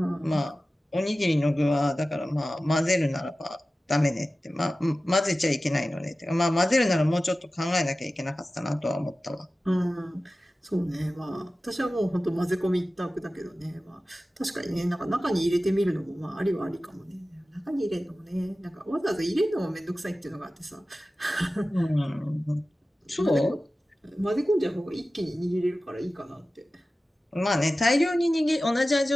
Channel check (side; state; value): both; normal; correlation 0.95